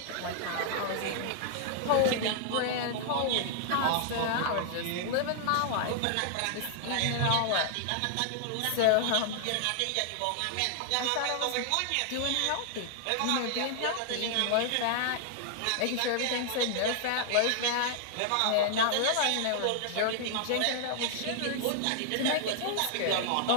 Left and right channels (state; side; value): different; both; correlation -0.01